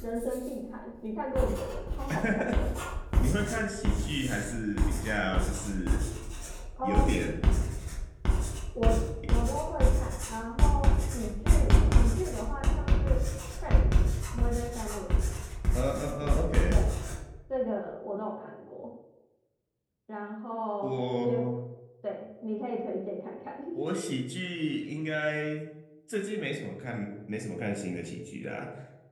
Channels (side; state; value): both; identical; correlation 1.00